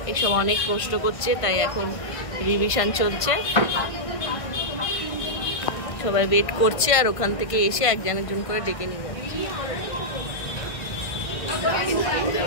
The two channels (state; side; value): late; right; 1.6 ms